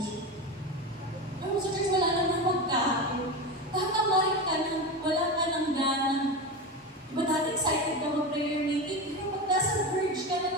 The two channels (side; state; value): both; normal; correlation 0.21